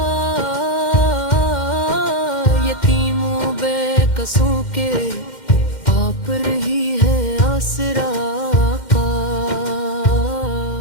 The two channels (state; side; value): late; right; 2.1 ms